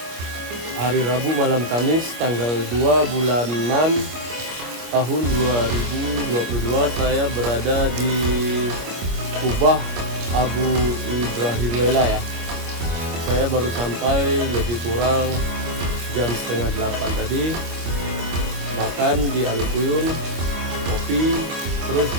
hari Rabu malam Kamis tanggal 2 bulan 6 tahun 2022, saya berada di Kubah Abu Ibrahim Lela ya. Saya baru sampai lebih kurang jam setengah 8 tadi, makan di Alukuyun, kopi, terus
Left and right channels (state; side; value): late; left; 25 ms